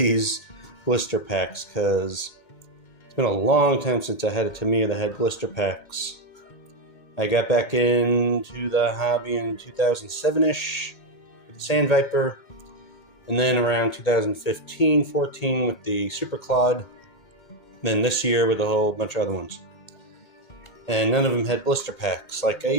blister packs because it's been a long time since I had a Tamiya that had blister packs. I got back into the hobby in 2007-ish with the Sand Viper, and then around 2015-14 with the Super Claude, then this year with a whole bunch of other ones. And none of them had blister packs like I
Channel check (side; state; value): right; late; 2.1 ms